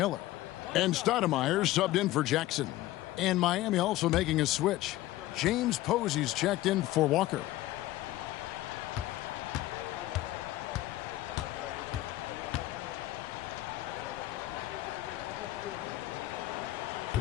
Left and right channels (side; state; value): right; quieter; 16.2 dB